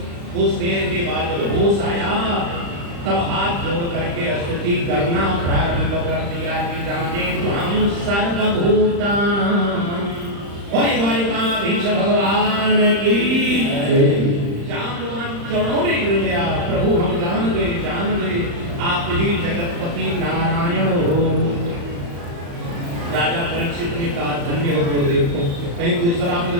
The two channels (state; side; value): late; left; 35 ms